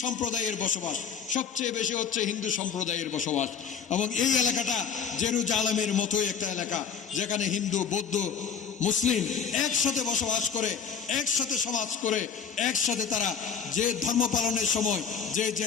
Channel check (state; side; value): quieter; right; 6.8 dB